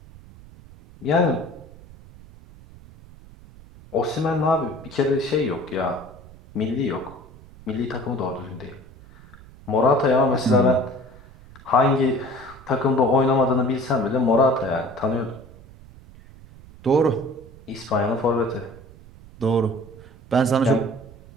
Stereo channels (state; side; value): noise; right; rumble, 21 dB below the sound